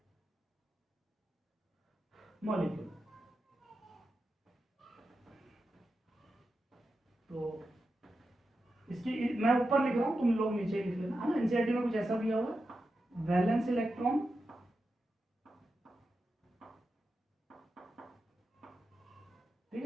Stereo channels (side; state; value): both; normal; correlation 0.89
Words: molecule. तो इसकी मैं ऊपर लिख रहा हूं, तुम लोग नीचे लिख लेना, है ना। एनसीईआरटी में कुछ ऐसा दिया हुआ है, वैलेंस इलेक्ट्रॉन ठीक